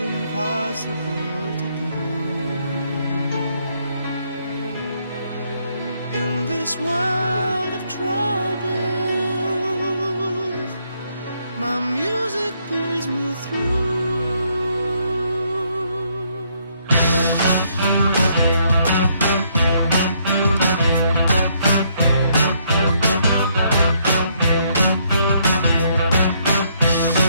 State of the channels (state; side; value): inverted; both; correlation -0.71